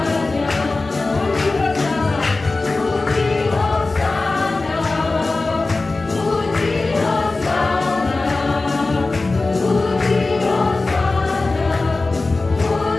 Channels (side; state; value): right; quieter; 3.4 dB